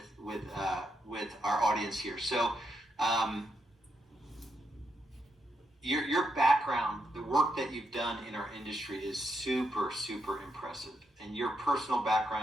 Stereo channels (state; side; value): normal; both; correlation 0.81